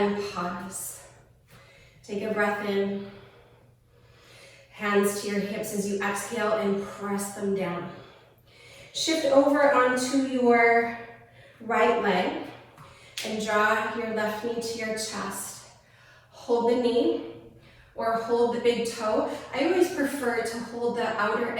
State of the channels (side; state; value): both; identical; correlation 1.00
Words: pause. Take a breath in. Hands to your hips as you exhale and press them down. Shift over onto your right leg and draw your left knee to your chest. Hold the knee or hold the big toe. I always prefer to hold the outer